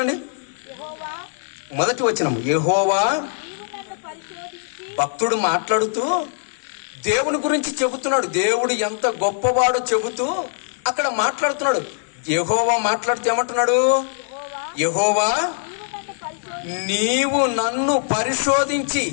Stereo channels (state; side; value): silent; right; digital silence